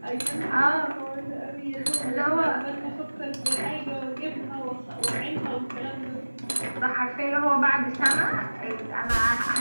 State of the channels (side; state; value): both; inverted; correlation -1.00